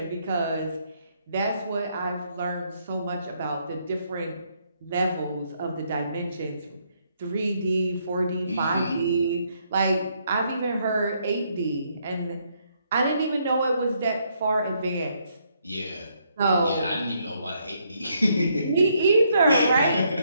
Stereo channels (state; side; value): inverted; both; correlation -0.73